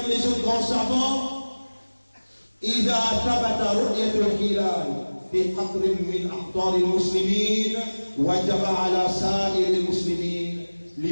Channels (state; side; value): inverted; both; correlation -1.00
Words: les autres grands savants. إذا ثبت رؤية الهلال في قطر من أقطار المسلمين وجب على سائر المسلمين